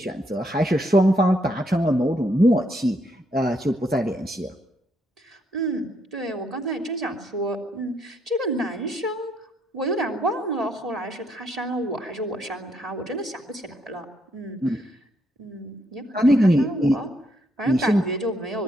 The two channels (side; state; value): both; normal; correlation 0.74